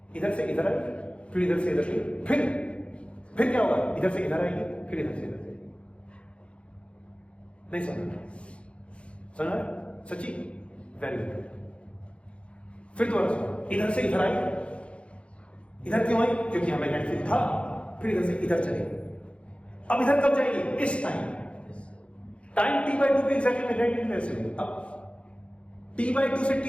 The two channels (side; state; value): right; late; 0.060 ms